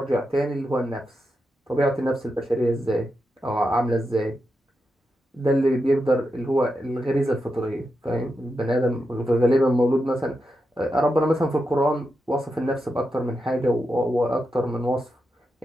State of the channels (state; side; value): normal; both; correlation 0.87